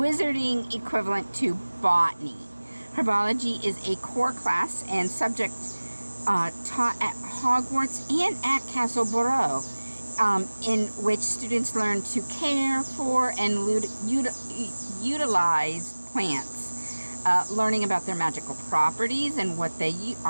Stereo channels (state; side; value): inverted; both; correlation -1.00